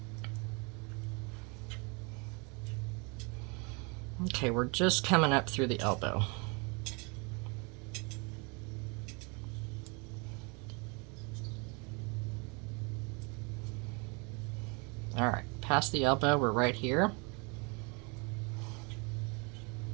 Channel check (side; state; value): left; quieter; 31.2 dB